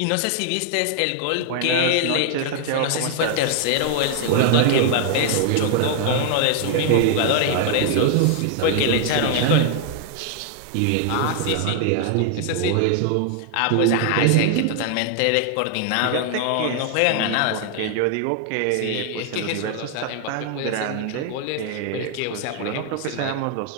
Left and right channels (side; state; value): both; different; correlation 0.00